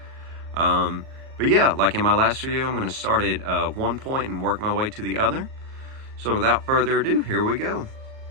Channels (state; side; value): late; left; 38 ms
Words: But yeah, like in my last video, I'm going to start at one point and work my way to the other. So without further ado, here we go.